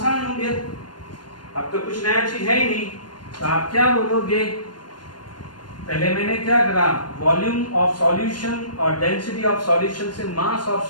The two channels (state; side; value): late; right; 0.71 ms